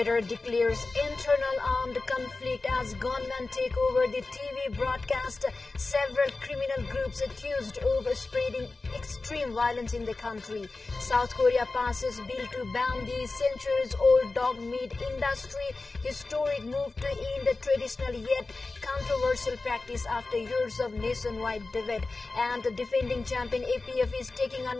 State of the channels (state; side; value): quieter; right; 3.5 dB